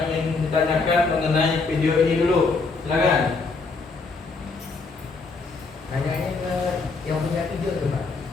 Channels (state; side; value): quieter; right; 4.2 dB